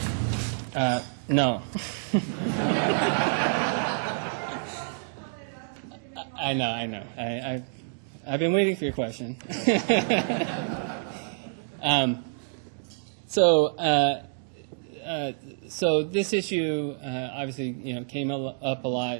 No. I know. I've been waiting for your question. So this issue obviously came up a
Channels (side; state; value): left; silent; digital silence